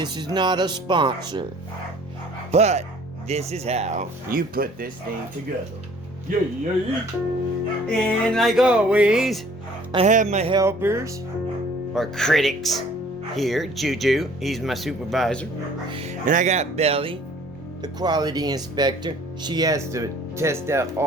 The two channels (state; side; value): normal; both; correlation 0.54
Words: is not a sponsor, but this is how you put this thing together. Yay! And like always, I have my helpers, or critics, here. Juju, he's my supervisor. And I got Belly, the quality inspector. She has to test out